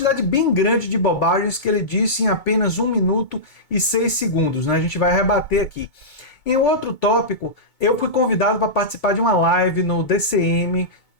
bem grande de bobagens que ele disse em apenas 1 minuto e 6 segundos, né? A gente vai rebater aqui. Em outro tópico, eu fui convidado para participar de uma live no DCM.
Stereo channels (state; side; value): late; right; 2.2 ms